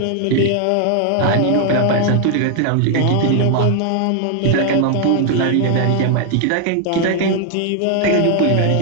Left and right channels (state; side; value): different; both; correlation 0.00